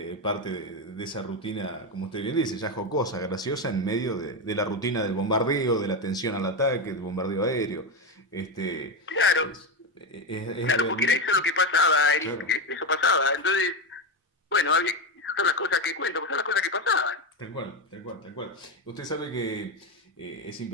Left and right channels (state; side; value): normal; both; correlation 0.12